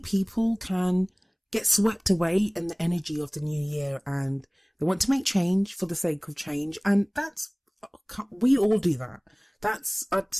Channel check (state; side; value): identical; both; correlation 1.00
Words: can get swept away in the energy of the new year, and they want to make change for the sake of change. And we all do that. That's, I'd